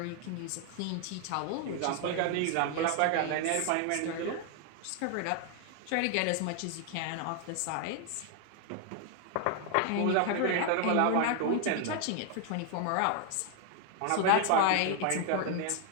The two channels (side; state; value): both; different; correlation 0.00